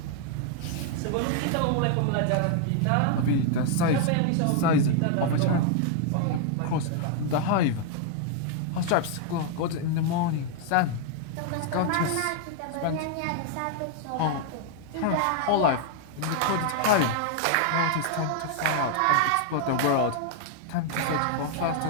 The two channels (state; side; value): different; both; correlation 0.00